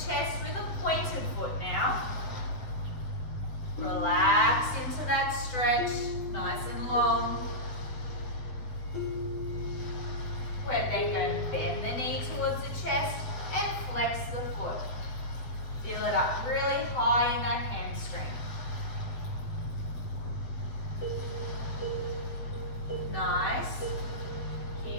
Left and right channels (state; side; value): late; right; 7.8 ms